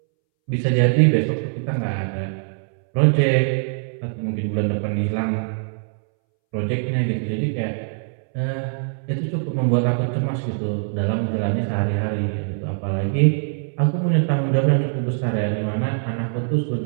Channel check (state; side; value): silent; left; 63 dB below the other